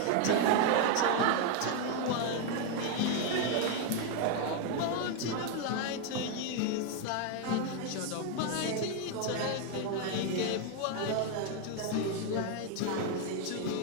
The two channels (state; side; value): different; both; correlation 0.01